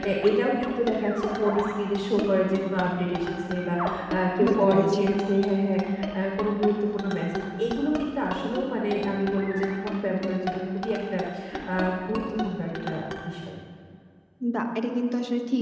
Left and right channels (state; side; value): identical; both; correlation 1.00